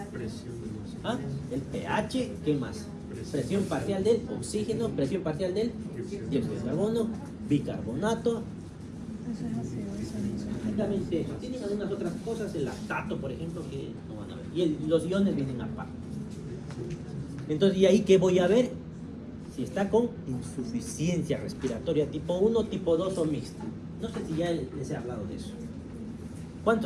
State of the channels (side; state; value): both; identical; correlation 1.00